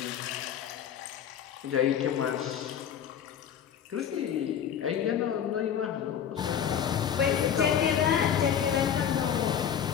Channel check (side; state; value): right; quieter; 8.7 dB